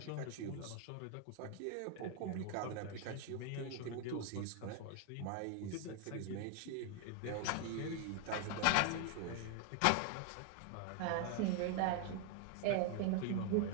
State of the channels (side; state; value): both; different; correlation 0.00